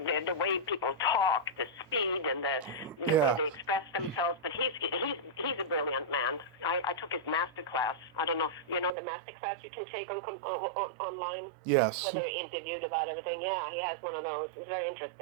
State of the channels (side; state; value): left; drops out; at 8.9 s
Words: way people talk, the speed, and the way they express themselves. But he's a brilliant man. I took his master class. I don't know if you know the master class you can take on online. Yes. Where they're interviewed about everything. Yeah, he has one of those. It was very